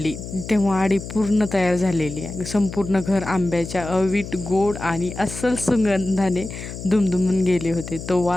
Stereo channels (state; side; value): noise; left; hum, 10 dB below the sound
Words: तेव्हा आडी पूर्ण तयार झालेली आहे. संपूर्ण घर आंब्याच्या अवीट गोड आणि अस्सल सुगंधाने दुमदुमून गेले होते. तो